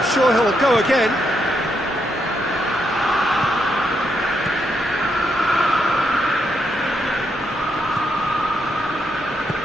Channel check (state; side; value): normal; both; correlation 0.79